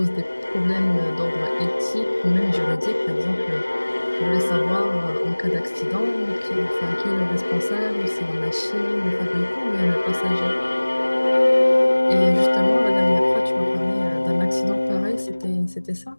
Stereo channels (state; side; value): inverted; both; correlation -1.00